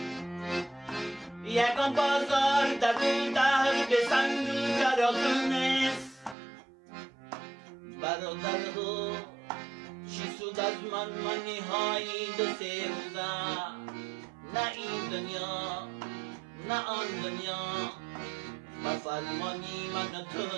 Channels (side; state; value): left; drops out; at 6.4 s